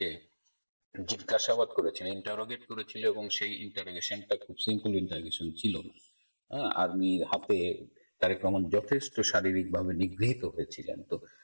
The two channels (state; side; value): inverted; both; correlation -1.00